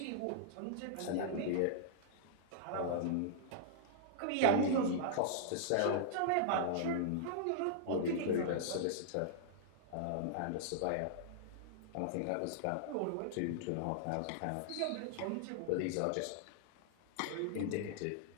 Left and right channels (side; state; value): both; different; correlation -0.01